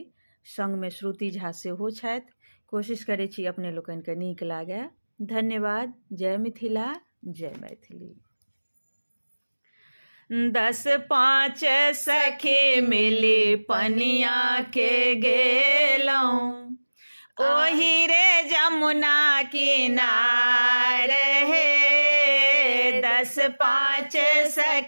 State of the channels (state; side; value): inverted; both; correlation -1.00